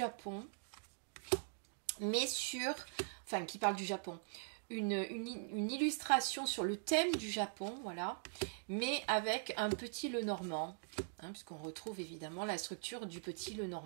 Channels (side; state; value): left; silent; digital silence